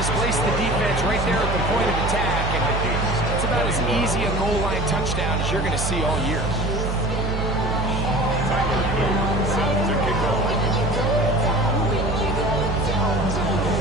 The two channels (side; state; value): right; noise; hum, 2 dB below the sound